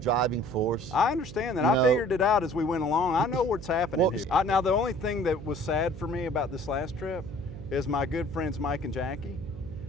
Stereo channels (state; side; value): noise; right; hum, 13 dB below the sound